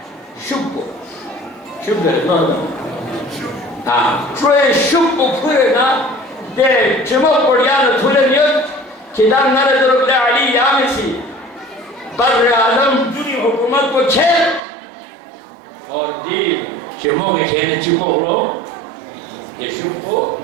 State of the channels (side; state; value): left; drops out; at 14.6 s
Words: شبو شبو شوئے شبو پھرے نا دے چمک پڑیانا تھولے نیت کدام نرد رب علی یامسی بر اعظم دنی حکومت کو چھیر اور دی چمک کھیلے چکو گلو دے شبو